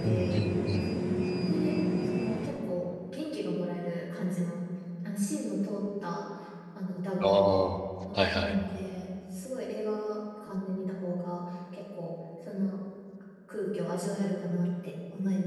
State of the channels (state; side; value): identical; both; correlation 1.00